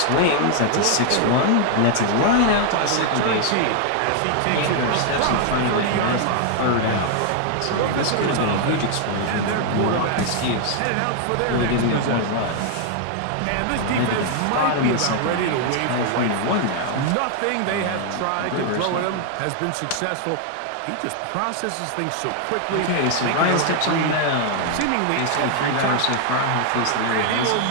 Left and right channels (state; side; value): different; both; correlation 0.00